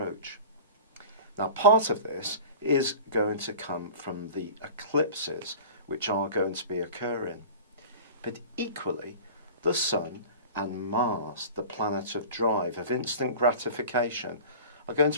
Now, part of this is going to come from the eclipses which are going to be occurring. But equally, the Sun and Mars, the planet of drive, of instant gratification, are going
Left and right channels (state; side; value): inverted; both; correlation -0.38